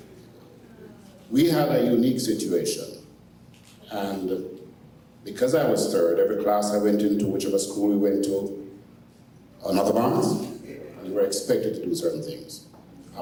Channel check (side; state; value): both; identical; correlation 1.00